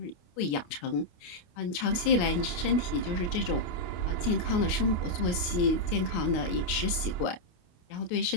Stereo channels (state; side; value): late; right; 29 ms